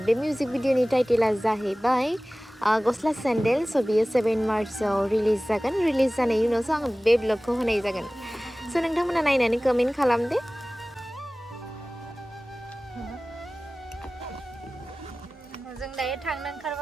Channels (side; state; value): both; normal; correlation 0.98